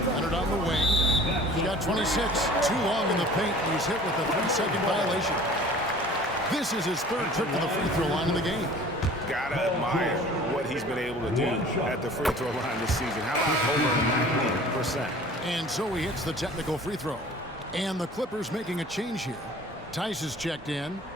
Leonard on the wing. He got 26. Too long in the paint. He's hit with a 3-second violation. This is his third trip to the free throw line in the game. Gotta admire what he's been able to do at the free throw line this season. How about over 90%? And so he hits the technical free throw. And the Clippers making a change here. Tice is checked in.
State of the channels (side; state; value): both; normal; correlation 0.47